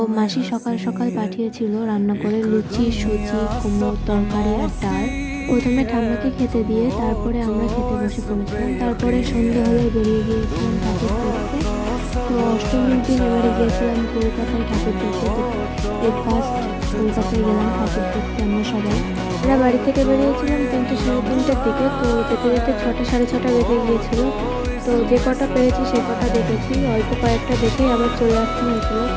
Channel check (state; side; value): identical; both; correlation 1.00